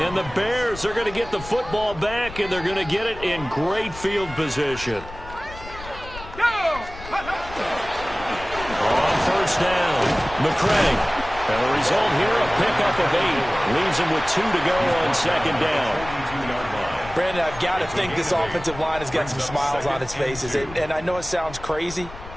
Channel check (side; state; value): left; noise; rumble, 14 dB below the sound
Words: the Bears are going to get the football back, and they're going to get it in great field position. On 1st down, McCray. And the result here, a pickup of 8. Leaves him with 2 to go on 2nd down. Brandon, I've got to think this offensive line has got some smiles on its faces. And I know it sounds crazy,